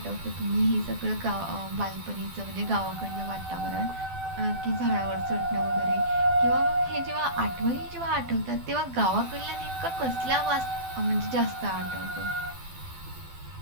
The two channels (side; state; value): left; late; 12 ms